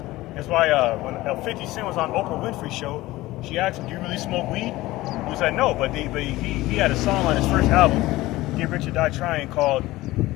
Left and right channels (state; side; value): quieter; right; 18.1 dB